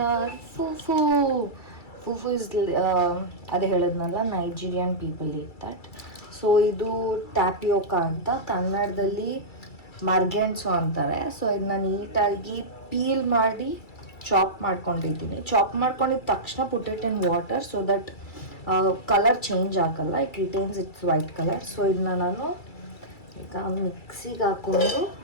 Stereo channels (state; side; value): late; right; 2.3 ms